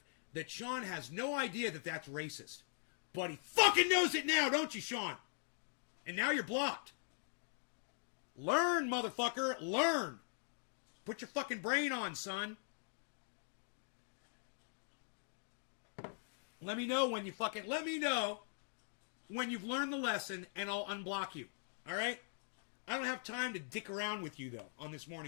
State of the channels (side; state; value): right; silent; digital silence